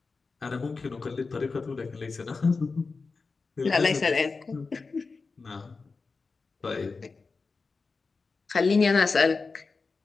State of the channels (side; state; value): right; quieter; 4.3 dB